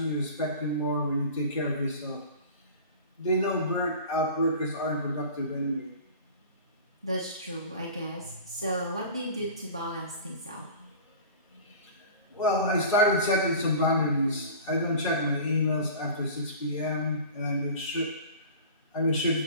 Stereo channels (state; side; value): inverted; both; correlation -0.39